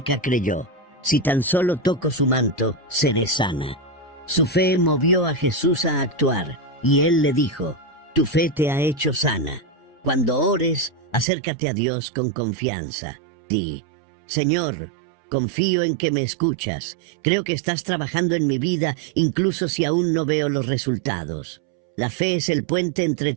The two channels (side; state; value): left; drops out; at 11.2 s